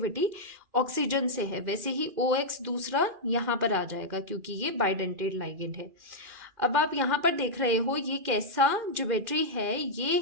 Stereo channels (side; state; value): left; late; 2.4 ms